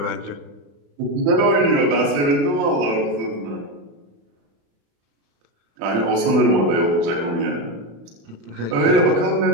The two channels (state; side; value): late; left; 35 ms